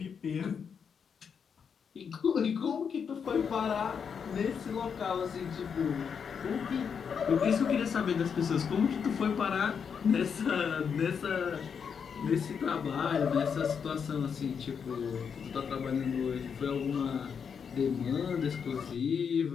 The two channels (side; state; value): right; quieter; 6.7 dB